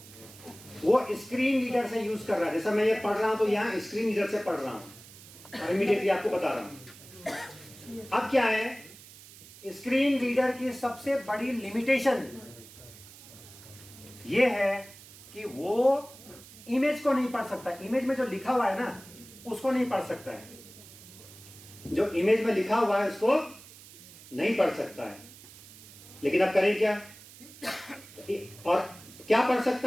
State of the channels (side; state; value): right; noise; hiss, 19 dB below the sound